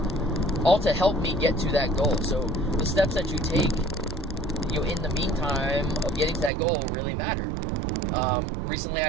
all to help me get to that goal. So the steps that you take, in the meantime of getting to that goal really matter. Recently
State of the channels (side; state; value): left; drops out; at 6.5 s